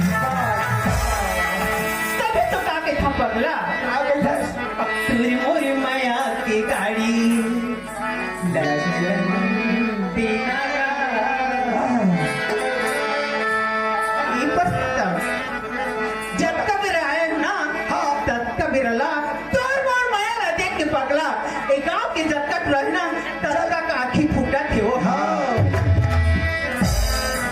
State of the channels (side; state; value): both; identical; correlation 1.00